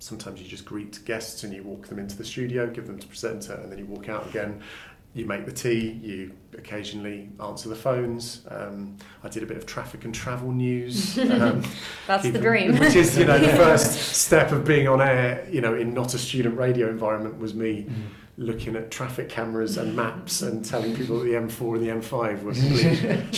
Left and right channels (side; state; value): both; identical; correlation 1.00